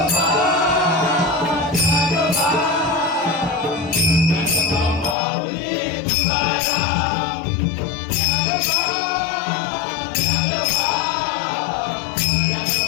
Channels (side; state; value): right; drops out; at 5.2 s